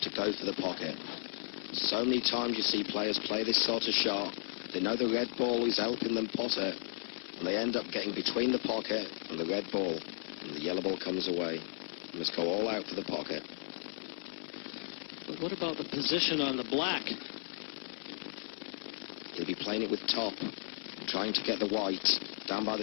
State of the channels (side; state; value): right; silent; digital silence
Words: go for the pocket. So many times you see players play this sort of shot, they know the red ball is helping them pot it, and they end up getting between the pocket and the red ball, and the yellow ball comes away. You must go all out for the pocket. But what about the position on the black? He'll be playing it with top, trying to get the white down by the